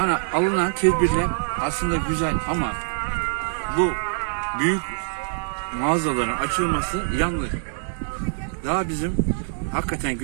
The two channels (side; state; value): left; silent; digital silence